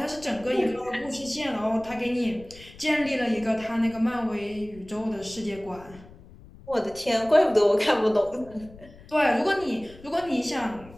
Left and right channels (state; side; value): noise; left; rumble, 21 dB below the sound